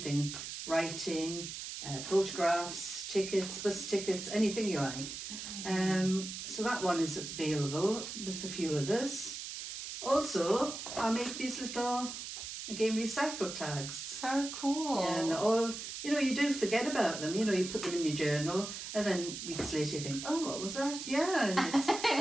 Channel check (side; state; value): right; noise; hiss, 8 dB below the sound